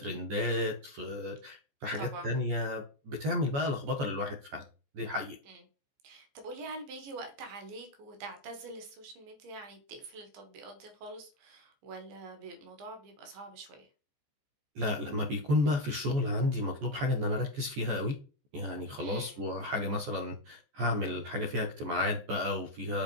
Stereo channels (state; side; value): late; left; 14 ms